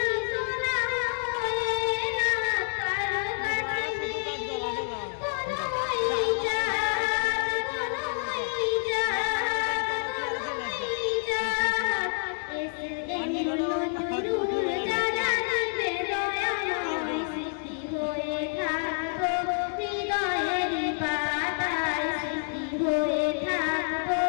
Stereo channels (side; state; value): right; silent; 59 dB below the other